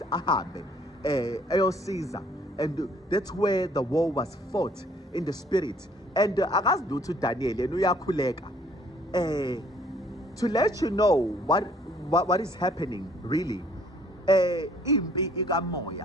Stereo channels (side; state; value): both; normal; correlation 0.60